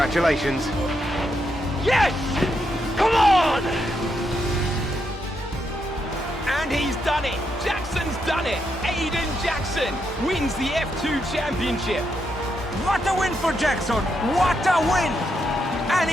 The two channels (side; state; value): both; normal; correlation 0.81